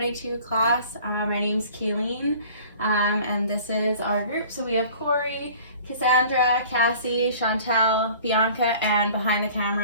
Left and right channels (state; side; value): inverted; both; correlation -0.48